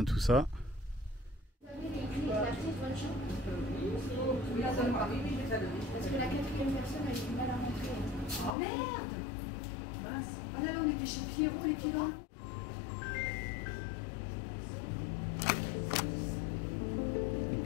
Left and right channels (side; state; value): right; drops out; at 8.6 s